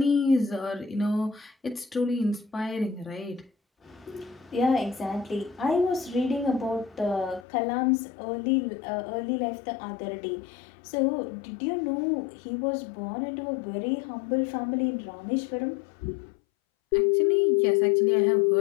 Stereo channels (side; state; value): right; drops out; at 7.5 s